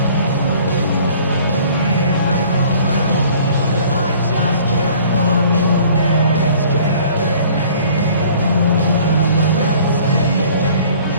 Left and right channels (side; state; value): both; inverted; correlation -0.52